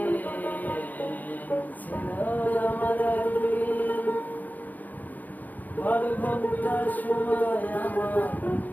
ছিল আমার একদিন, 12 ঘন্টা সময় আমার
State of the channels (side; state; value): right; late; 0.082 ms